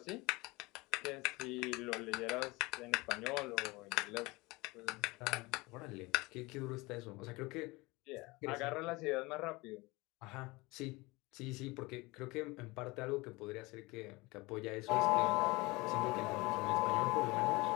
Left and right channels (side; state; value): right; quieter; 23.3 dB